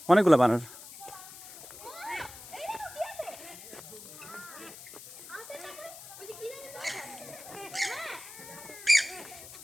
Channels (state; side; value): noise; left; hiss, 15 dB below the sound